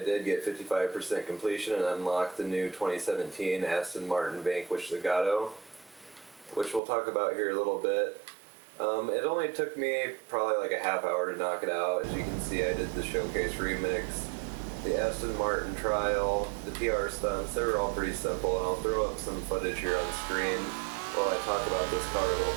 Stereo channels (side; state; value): left; drops out; at 6.8 s